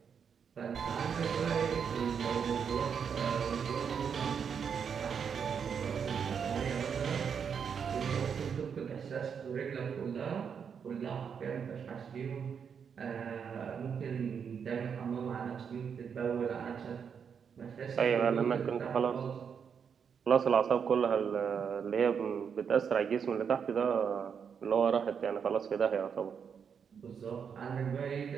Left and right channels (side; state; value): left; quieter; 7.0 dB